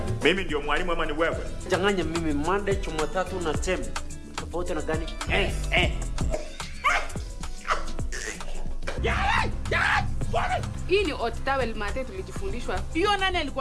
Mimi ndio mwalimu ama ni wewe? Changanya mimi Monday, Jumatatu na Tembe. Tofauti na gani? Hii ni hot towel mate tulijifundishwa. Hiyo nani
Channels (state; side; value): identical; both; correlation 1.00